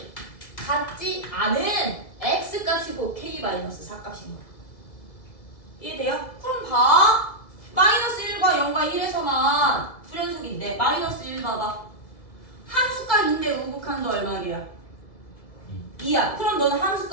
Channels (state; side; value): late; right; 2.2 ms